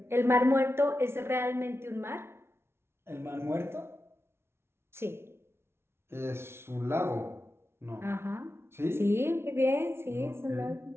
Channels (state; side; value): late; left; 0.12 ms